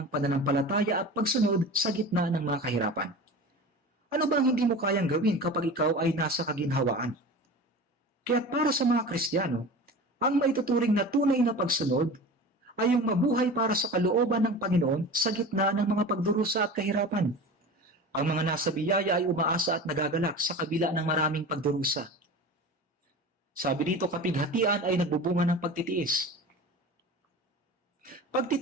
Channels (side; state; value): both; normal; correlation 0.34